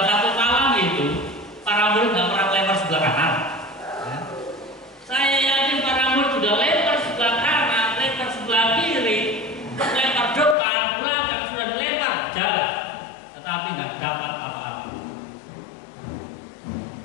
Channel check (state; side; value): drops out; right; at 10.6 s